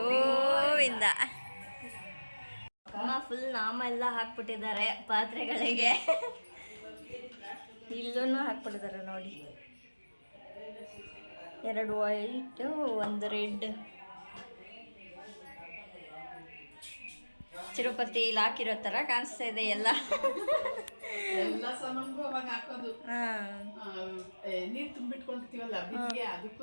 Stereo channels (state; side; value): inverted; both; correlation -1.00